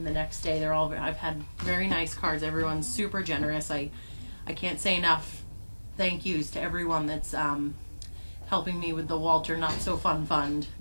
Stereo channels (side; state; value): both; inverted; correlation -1.00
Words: the next day. I've had very nice cards. Everyone's super generous. I can't say enough thank yous to everyone that's helping me with the Walter Not So Fun Fund